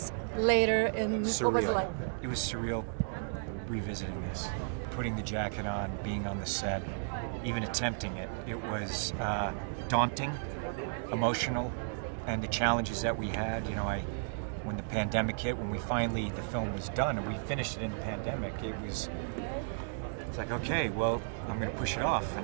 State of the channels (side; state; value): left; silent; digital silence